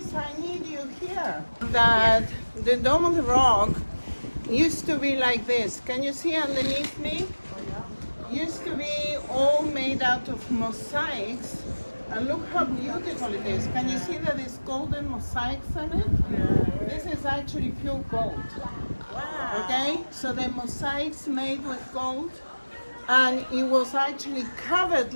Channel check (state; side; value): inverted; both; correlation -1.00